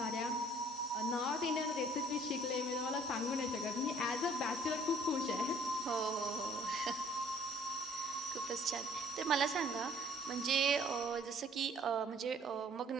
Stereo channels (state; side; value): normal; both; correlation 0.57